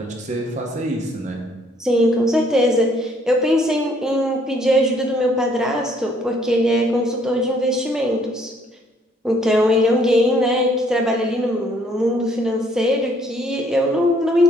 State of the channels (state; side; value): normal; both; correlation 0.64